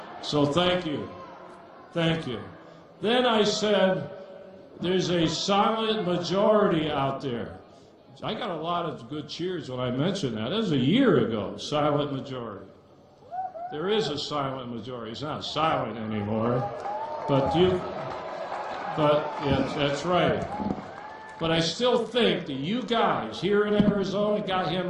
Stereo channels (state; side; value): identical; both; correlation 1.00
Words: So thank you. Thank you. Then I said, there's a silent majority out there. I got a lot of good cheers when I mentioned that. That was a year ago, silent majority. There is a silent majority. It's not silent anymore. But yes, that's right. But I still think that you guys here in Arizona got him